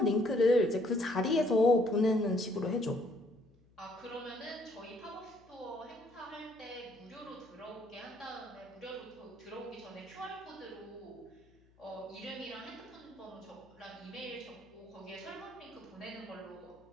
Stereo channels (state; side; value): noise; left; hum, 29 dB below the sound